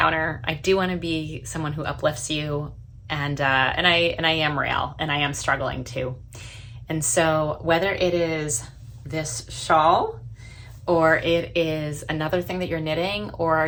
I do want to be someone who uplifts you, and I am real, and I am struggling too. And so whether it is this shawl, or it is another thing that you're knitting,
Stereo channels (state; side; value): identical; both; correlation 1.00